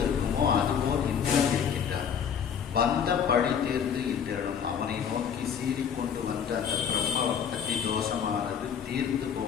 இருக்குமோ அதுபோல் இந்திரன் இருக்கின்றார். வந்த பழி தீர்ந்து இந்திரனும் அவனை நோக்கி சீறிக்கொண்டு வந்த அந்த பிரம்ம பக்தி தோஷமானது தீர்ந்து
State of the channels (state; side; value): quieter; right; 7.7 dB